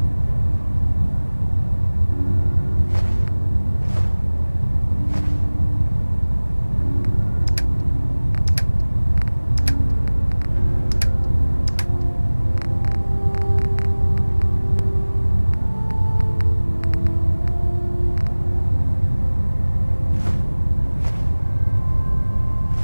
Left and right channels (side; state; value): both; inverted; correlation -1.00